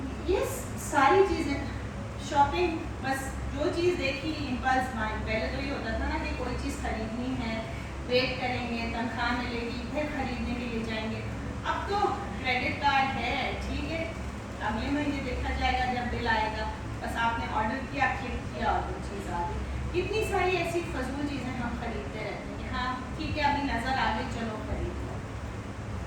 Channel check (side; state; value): both; identical; correlation 1.00